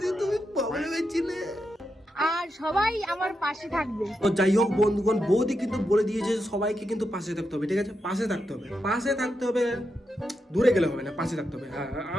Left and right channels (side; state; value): both; normal; correlation 0.85